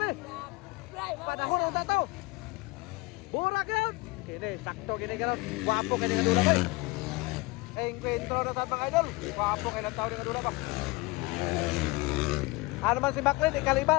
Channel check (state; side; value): quieter; right; 24.1 dB